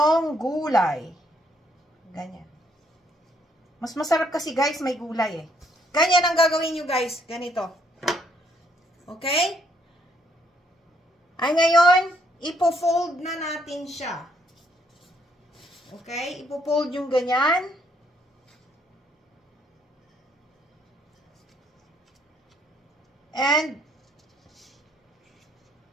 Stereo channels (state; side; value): normal; both; correlation 0.70